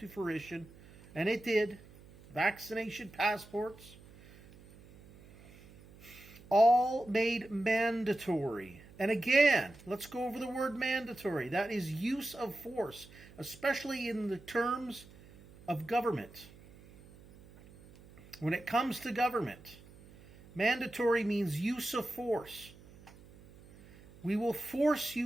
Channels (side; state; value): right; noise; hum, 22 dB below the sound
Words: fruition. And it did. Vaccination passports. All made mandatory. And again, let's go over the word mandatory. That is use of force, especially in the terms of government. When it comes to government, mandatory means use of force. We will force